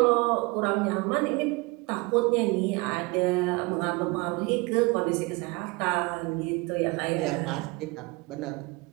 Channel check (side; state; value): left; quieter; 25.8 dB